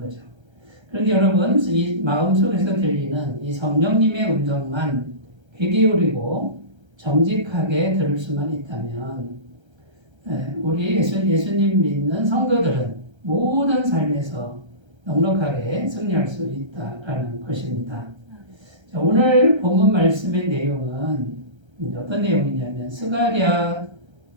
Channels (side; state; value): left; late; 1.3 ms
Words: 그런데 여러분, 이 마음속에서 들리는 이 성령님의 음성만 귀 기울이고 정직하게 들을 수만 있다면 우리 예수님 믿는 성도들은 모든 삶에서 넉넉하게 승리할 수 있다라는 것입니다. 자, 오늘 본문 말씀의 내용은 어떤 내용이냐면 스가랴서지